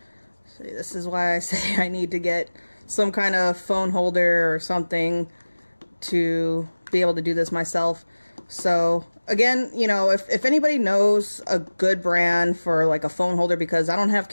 See, this is why I say I need to get some kind of phone holder or something to be able to do this myself. So again, you know, if anybody knows a good brand for like a phone holder, because I don't have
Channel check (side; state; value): both; inverted; correlation -1.00